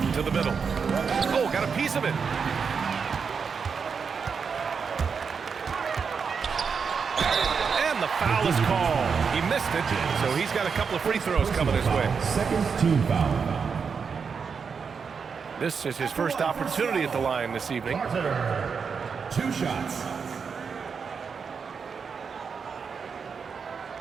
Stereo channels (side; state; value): left; quieter; 5.9 dB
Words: To the middle. Oh, got a piece of it. And the foul is called. He missed it, so he's got a couple of free throws coming his way. Second team foul. This is his first opportunity at the line this evening. 2 shots.